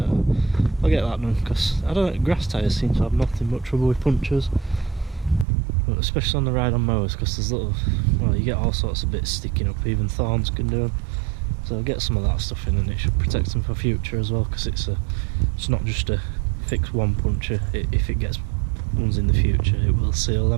I'll get that done, because I don't know, grass tyres seem to have nothing but trouble with punctures, but especially on the ride on mowers, because there's little, well, you get all sorts of bits sticking up, even thorns can do them. So I'll get some of that stuff in, and it should protect them for future as well, because it's not just a fix one puncture. If it gets ones in the future, it will seal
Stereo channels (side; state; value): left; drops out; at 5.5 s